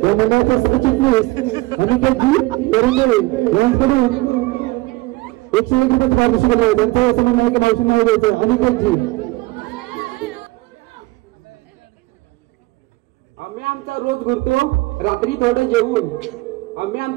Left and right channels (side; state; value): left; quieter; 20.8 dB